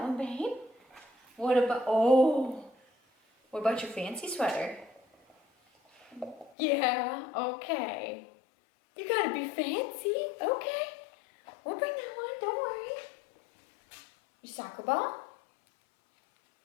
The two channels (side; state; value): right; drops out; at 6.5 s